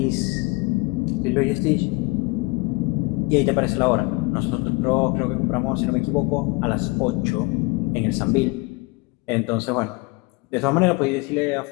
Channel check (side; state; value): right; quieter; 26.0 dB